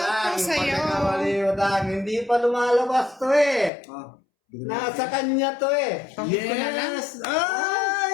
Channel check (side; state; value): right; drops out; at 3.7 s